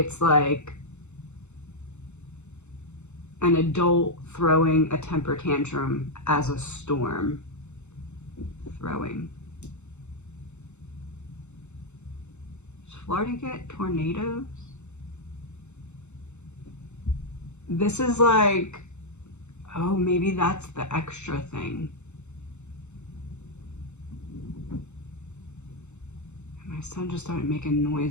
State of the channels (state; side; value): late; right; 0.83 ms